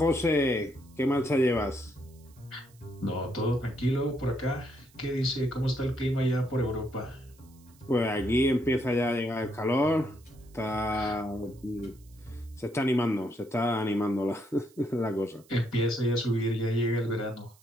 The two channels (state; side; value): noise; right; hiss, 29 dB below the sound